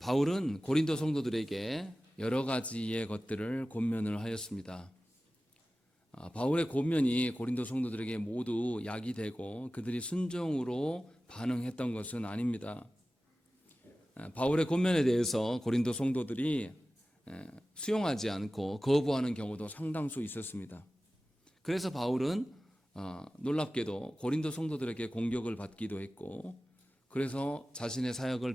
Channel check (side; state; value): both; normal; correlation 0.96